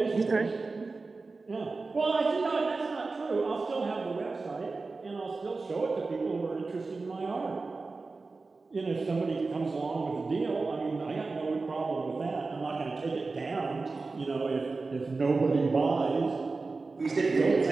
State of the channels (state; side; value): quieter; left; 3.9 dB